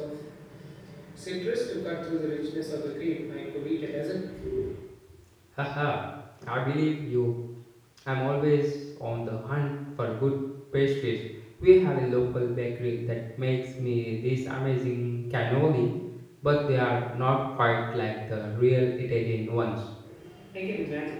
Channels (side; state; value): both; identical; correlation 1.00